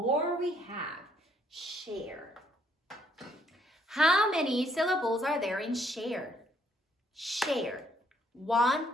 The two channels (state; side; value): normal; both; correlation 0.68